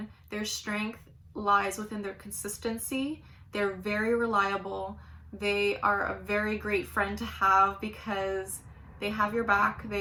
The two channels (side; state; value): both; identical; correlation 1.00